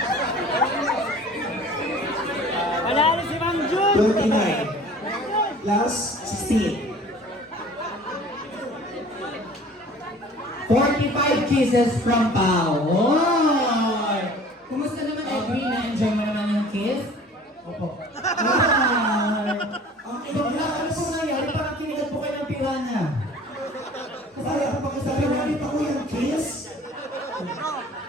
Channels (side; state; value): both; normal; correlation 0.47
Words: Panalo si Ma'am Jun! 29. Last, 16. 45 kisses from Pao. Oy! Kumusta naman Edwin? Na-enjoy mo naman yung kiss? Opo. Ay! Ano po nangyari? Parang kinigat po kayo ng piranha. Kaya kapag sabi namin ako yung kiss,